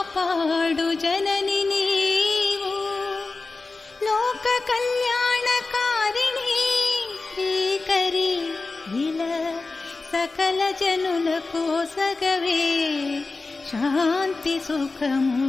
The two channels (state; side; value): quieter; right; 3.7 dB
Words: జనని నీవు. లోక కళ్యాణకారిణి శ్రీకరి ఇలా సకల జనులకు సగవే శాంతి